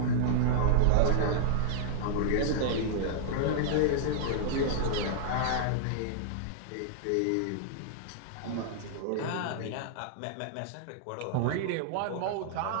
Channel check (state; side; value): different; both; correlation -0.01